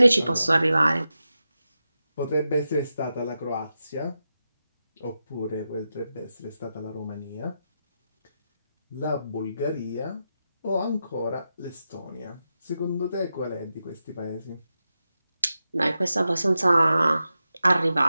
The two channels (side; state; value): both; inverted; correlation -0.89